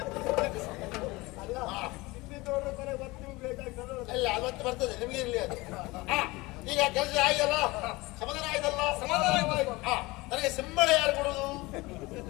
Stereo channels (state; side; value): quieter; right; 22.1 dB